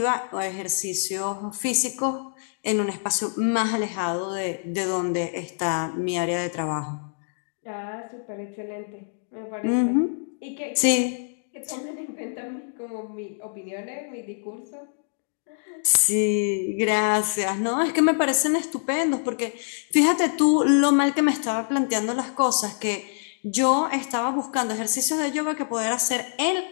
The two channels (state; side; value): silent; right; digital silence